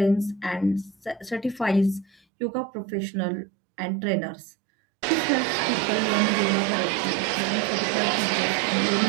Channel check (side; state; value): left; drops out; at 2.2 s